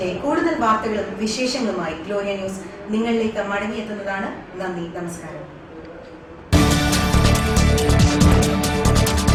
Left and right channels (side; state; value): both; identical; correlation 1.00